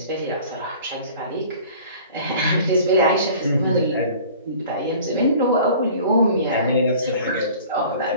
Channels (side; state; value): both; inverted; correlation -0.46